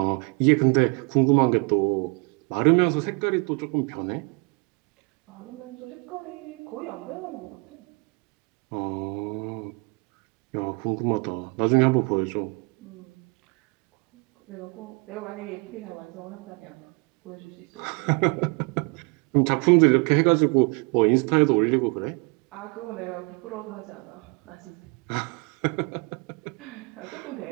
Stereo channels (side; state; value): left; quieter; 33.0 dB